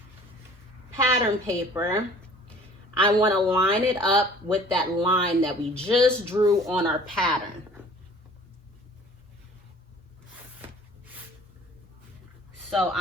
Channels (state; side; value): normal; both; correlation 0.50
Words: pattern paper. I wanna line it up with that line that we just drew on our pattern. So